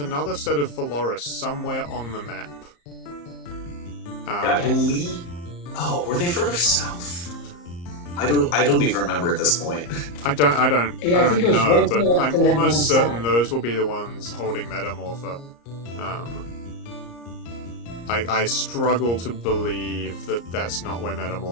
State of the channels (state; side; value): late; right; 34 ms